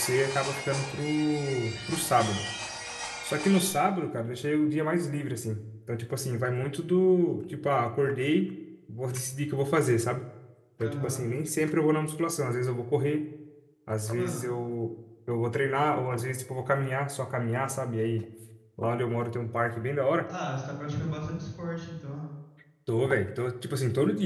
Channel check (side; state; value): both; identical; correlation 1.00